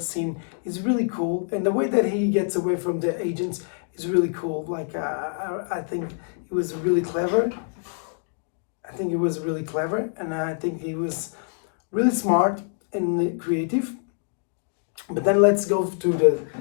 scene is really cool, and the way that he gets away from the agents is really cool. Like I think it was really clever. I think it was really clever, and I think he was really smart and creative. But then let's go to the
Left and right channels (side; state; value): right; silent; digital silence